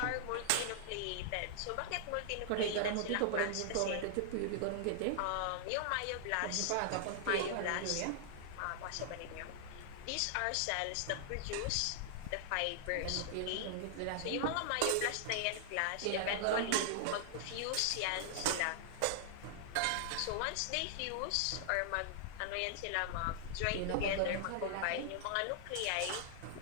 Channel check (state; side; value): different; both; correlation -0.01